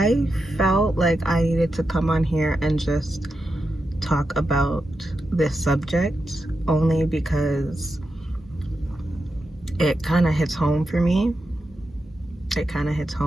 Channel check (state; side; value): normal; both; correlation 0.88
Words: felt like I needed to come on here and just talk about this subject only because it kind of hits home for me. It kind of hits